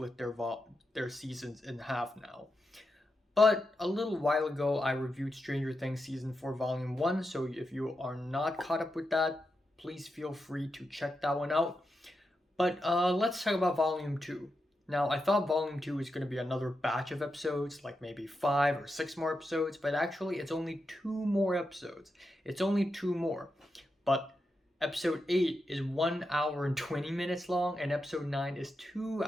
their seasons in half now. But a little while ago, I reviewed Stranger Things Season 4, Volume 1, so if you are not caught up with that, please feel free to check that one out. But let's talk about Volume 2. Now, I thought Volume 2 was going to be another batch of episodes, like maybe 5 or 6 more episodes, but actually it's only 2 more episodes. It's only 2 more. But Episode 8 is 1 hour and 20 minutes long, and Episode 9 is 2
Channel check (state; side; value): normal; both; correlation 0.87